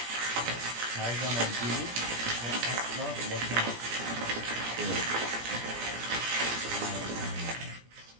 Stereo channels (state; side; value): late; left; 17 ms